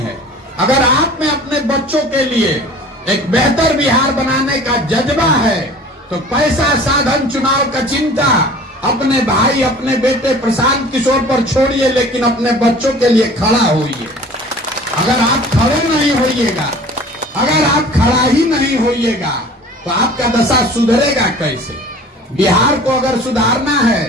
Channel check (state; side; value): normal; both; correlation 0.45